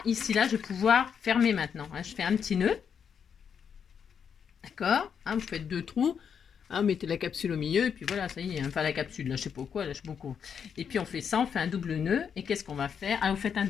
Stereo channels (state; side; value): quieter; right; 7.3 dB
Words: ici, là, je vais pouvoir fermer maintenant. Hein, je fais un petit nœud, d'accord, hein, vous faites 2 trous. Hein, mettez la capsule au milieu et puis voilà, ça y est. Enfin, la capsule, là, je sais pas quoi, là, je sais beaucoup. Et puis on fait ça, on fait un double nœud. Et qu'est-ce qu'on va faire? Ah, vous faites un